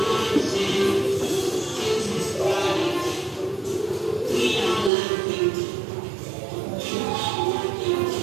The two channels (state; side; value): drops out; left; at 4.9 s